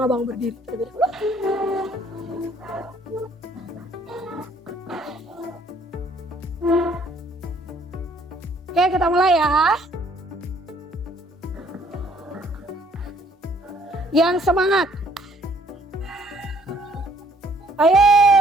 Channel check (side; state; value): both; normal; correlation 0.62